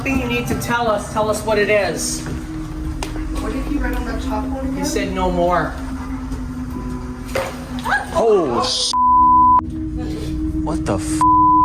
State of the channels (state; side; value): identical; both; correlation 1.00